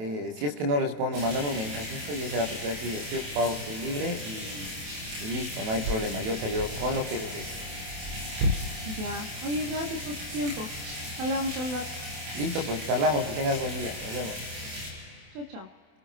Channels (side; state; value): left; late; 27 ms